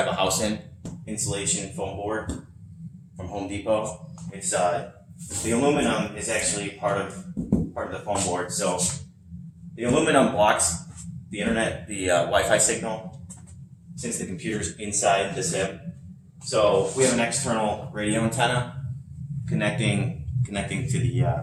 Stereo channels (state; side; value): identical; both; correlation 1.00